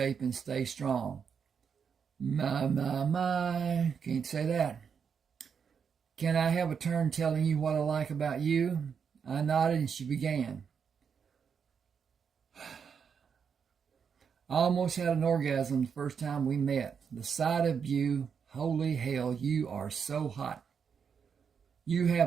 and stay strong." My. Can't say that. "Can I have a turn telling you what I like about you?" I nodded and she began. "I almost had an orgasm the first time we met. The sight of you, holy hell, you are so hot. You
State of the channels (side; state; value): left; quieter; 6.7 dB